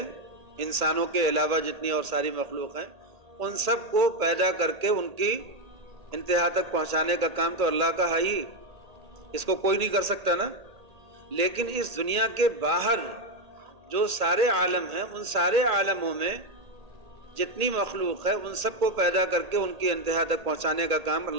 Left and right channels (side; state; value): left; late; 1.8 ms